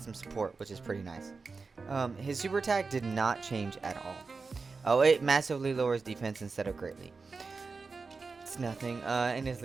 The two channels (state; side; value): quieter; left; 4.4 dB